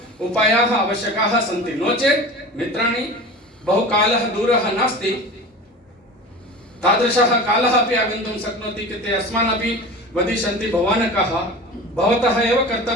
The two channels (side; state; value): both; normal; correlation 0.34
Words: उपायाः आवश्यकाः सन्ति। नो चेत् मित्राणि, बहुकालः दूरः नास्ति, तादृशः कालः अपि आगन्तुं शक्नोति कि ते अस्मान् अपि वदिष्यन्ति, भवान् कः? भवतः एव